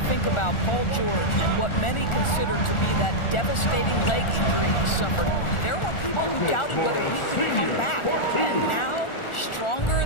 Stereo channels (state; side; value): late; right; 1.4 ms